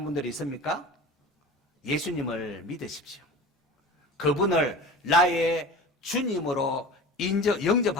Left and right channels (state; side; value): normal; both; correlation 0.36